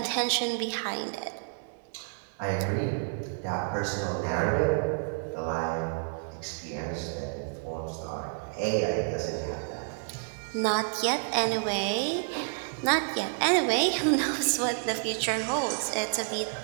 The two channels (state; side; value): silent; left; digital silence